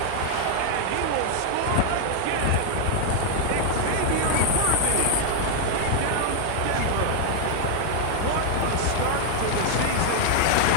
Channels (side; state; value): both; different; correlation 0.00